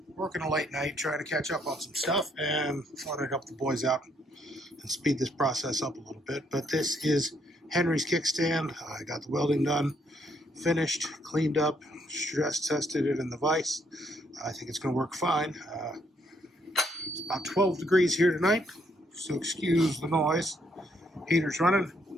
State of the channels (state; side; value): normal; both; correlation 0.71